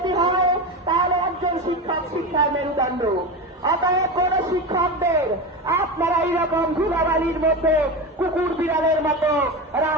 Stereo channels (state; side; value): normal; both; correlation 0.21